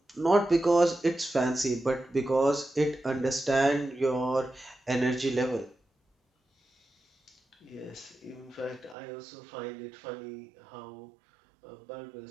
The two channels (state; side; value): drops out; left; at 9.0 s